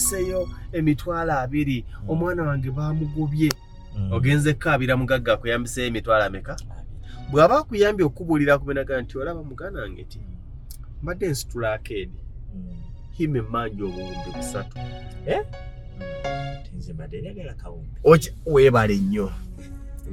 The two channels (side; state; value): both; identical; correlation 1.00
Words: emitwalo 2 omwana wange bamugobye ogenze kaabira mugagga akuyambise emitwalo ameka bw'aba akuyambye okubuulira kubenaga nti olaba mugana wange ti mbadde nsitula akeedi hime mmanji obuwumbi 3 tinze mbadde njagala kawumbi weebale nnyo